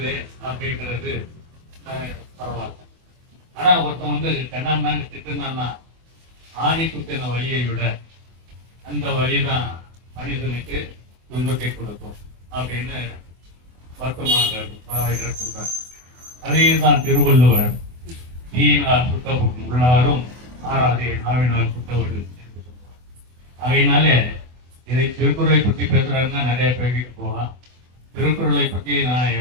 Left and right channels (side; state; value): left; late; 24 ms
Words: அப்படிங்கிறது பரவாயில்ல. ஆனா ஒருத்தன் கண்ணாமண்ணு திட்டுனான்னா ஆணி குத்தின வழியை விட அந்த வழிதான் மனிதனுக்கு துன்பத்தை கொடுக்கும் அப்படின்னு வருத்தமாக சொல்றார். அதே தான் திருவள்ளுவர் தீயினால் சுத்த உள்ளாரும் ஆறாதே நாவினால் சுத்தவடு என்று சொல்றார். அதனாலே இதை திருக்குறளை பற்றி பேசுறாருன்னா நிறைய பேருக்கு போகலாம். திருக்குறளை பற்றி நான்